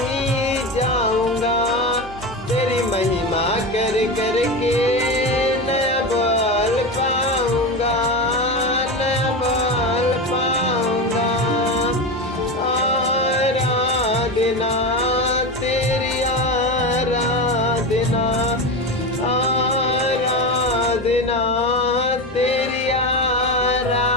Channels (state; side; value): normal; both; correlation 0.20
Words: जाऊंगा। तेरी महिमा कर कर के नया बल पाऊंगा। नया बल पाऊंगा। आराधना तेरी आराधना आराधना तेरी